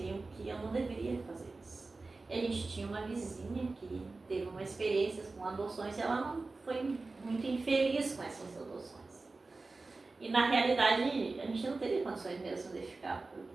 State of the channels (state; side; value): quieter; left; 3.6 dB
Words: que eu não deveria fazer isso. E a gente tinha uma vizinha que teve uma experiência com adoções e ela não foi muito infeliz com essas adoções. E na realidade a gente não teria condições mesmo de ficar,